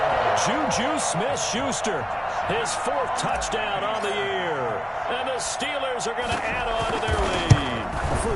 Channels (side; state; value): both; identical; correlation 1.00